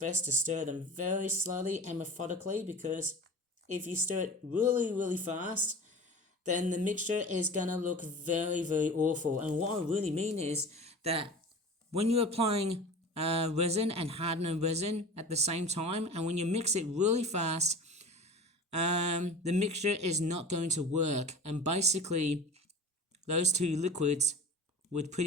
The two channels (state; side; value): normal; both; correlation 0.36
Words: to stir them very slowly and methodically, because if you stir it really, really fast, then the mixture is going to look very, very awful. And what I really mean is that when you're applying resin and hardener resin at the same time, and when you mix it really fast, the mixture is not going to work. And basically, those two liquids would